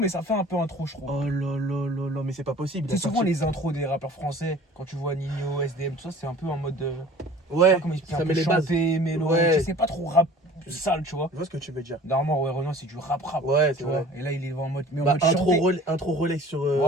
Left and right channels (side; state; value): both; normal; correlation 0.47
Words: ça fait un peu intro, je trouve. Oh là là là là, mais c'est pas possible. il a C'est souvent sorti- les intros des rappeurs français, quand tu vois Nino, SDM, tout ça, c'est un peu en mode. Ouais, Comment expliquer, ça un met peu les bases. chanté, mélo. Ouais. Tu sais, c'est pas trop rap sale, tu vois. Je vois ce que tu veux dire. Normalement, ouais, Renoir, c'est du rap. Ouais, Tu c'est vois. vrai. Et là, il est en mode. Mais en Bah, mode intro, chanté. intro Rolex sur.